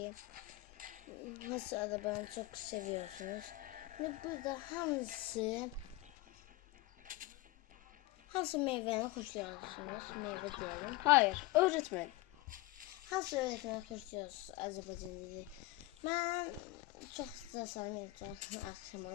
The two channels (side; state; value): right; quieter; 19.2 dB